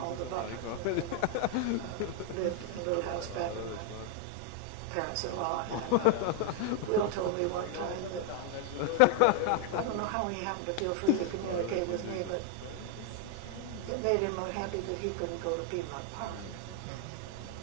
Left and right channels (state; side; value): different; both; correlation 0.00